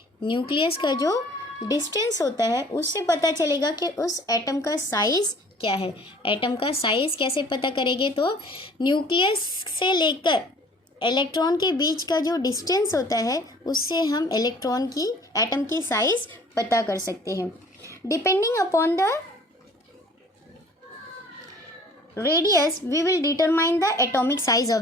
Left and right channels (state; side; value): normal; both; correlation 0.52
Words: न्यूक्लियस का जो डिस्टेंस होता है, उससे पता चलेगा कि उस एटम का साइज़ क्या है। एटम का साइज़ कैसे पता करेंगे? तो न्यूक्लियस से लेकर इलेक्ट्रॉन के बीच का जो डिस्टेंस होता है, उससे हम इलेक्ट्रॉन की, एटम की साइज़ पता कर सकते हैं। Depending upon the radius we will determine the atomic size of